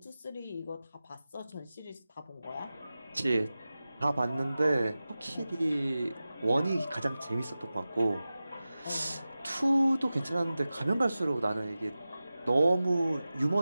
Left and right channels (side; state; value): both; inverted; correlation -0.95